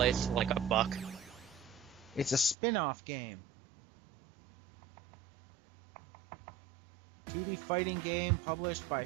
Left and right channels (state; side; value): drops out; left; at 2.6 s